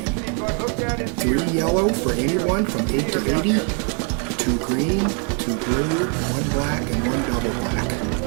3 yellow for anyone from 8 to 80, 2 green, 2 blue, 1 black, and 1 double black.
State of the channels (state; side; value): quieter; left; 39.7 dB